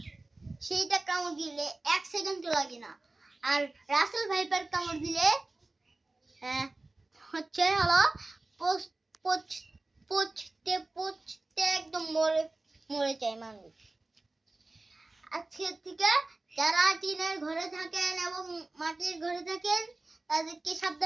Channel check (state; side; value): quieter; left; 3.1 dB